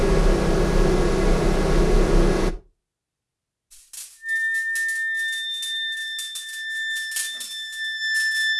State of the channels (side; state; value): both; identical; correlation 1.00